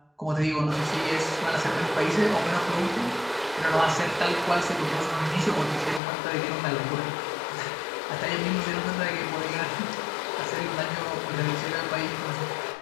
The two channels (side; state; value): right; drops out; at 6.0 s